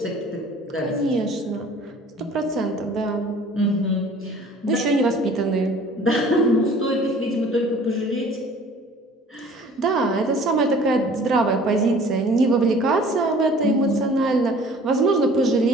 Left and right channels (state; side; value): normal; both; correlation 0.50